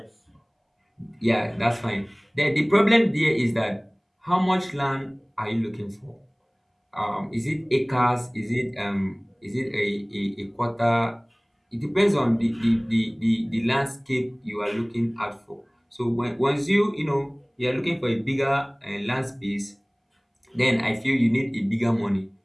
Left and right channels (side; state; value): both; identical; correlation 1.00